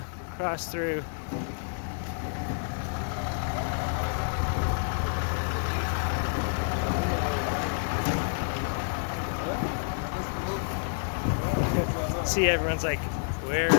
cross through. See, everyone's like,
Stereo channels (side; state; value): right; silent; digital silence